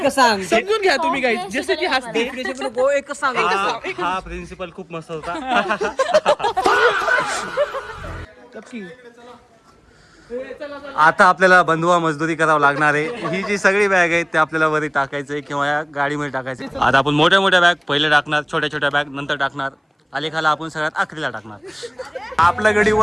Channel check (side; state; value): both; identical; correlation 1.00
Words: सांग समजून घ्या तुम्ही गाईज. जसं की हसते. एक सांग. हा प्रिन्सिपल खूप मस्त होता. आता आपल्याला बंधुआ मजदुरी करावं लागणार आहे. ही जी सगळी बॅग आहेत ते आपल्याला वरी टाकायचंय किंवा या गाडीमध्ये टाकायचंय. आता आपण मोठ्या बॅग पहिले टाकणार, छोट्या बॅग नंतर टाकणार. अलेखाला आपण सगळ्यात आखरीला टाकणार. आपल्या